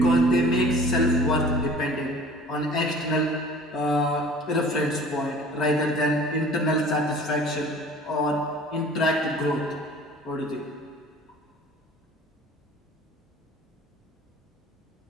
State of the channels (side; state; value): both; normal; correlation 0.47